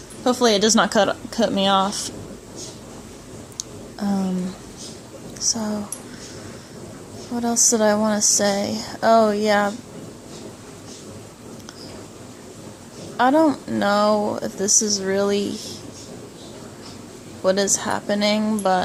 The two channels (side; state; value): both; identical; correlation 1.00